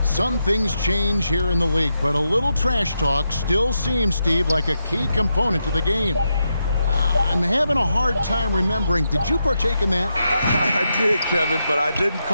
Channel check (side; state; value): both; inverted; correlation -0.84